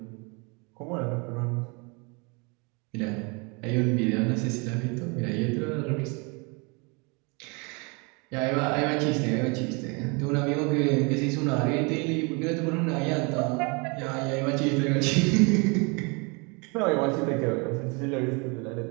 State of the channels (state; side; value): quieter; left; 30.8 dB